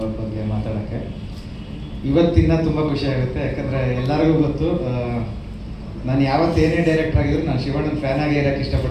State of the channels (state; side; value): identical; both; correlation 1.00